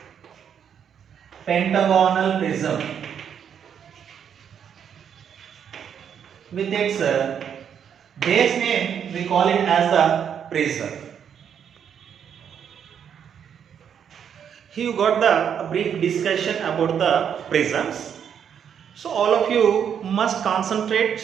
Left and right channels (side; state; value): left; quieter; 8.2 dB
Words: pentagonal prism. With its base name, we call it as the prism. Here you got the brief discussion about the prisms. So all of you must